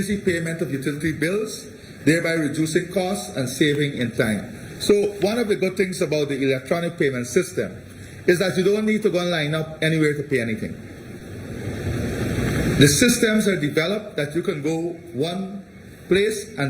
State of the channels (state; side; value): identical; both; correlation 1.00